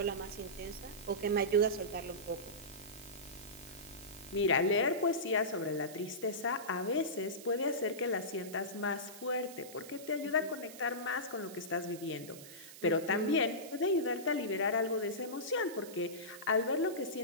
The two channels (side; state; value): right; noise; hiss, 15 dB below the sound